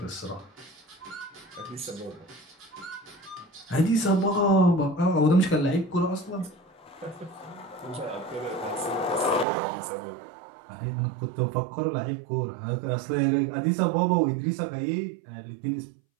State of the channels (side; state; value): left; drops out; at 9.5 s